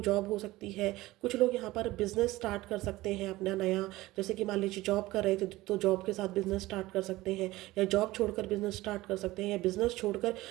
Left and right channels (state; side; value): quieter; left; 18.3 dB